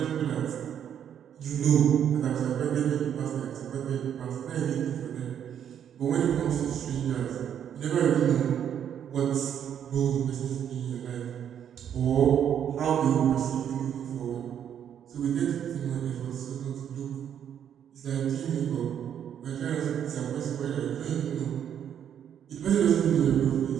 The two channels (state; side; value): quieter; left; 9.2 dB